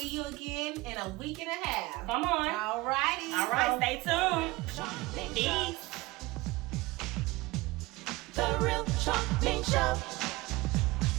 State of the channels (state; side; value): quieter; left; 21.1 dB